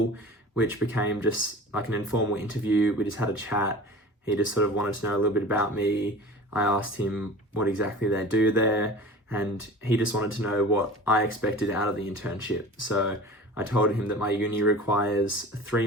which became just like an informal interview. We just had a chat. He just sort of wanted to know a little bit about me. I asked him what exactly they do there, and he just wanted to know what I expected out of the internship. So I told him that my uni requires a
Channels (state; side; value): normal; both; correlation 0.39